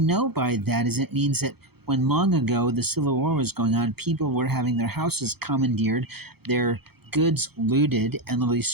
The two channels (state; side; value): late; left; 0.96 ms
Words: by that is it means that when long ago the Civil War was going on, people were having their houses commandeered, their goods looted, and literally